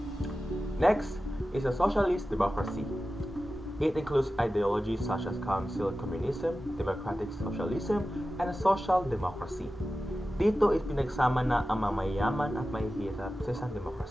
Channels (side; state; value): both; normal; correlation 0.94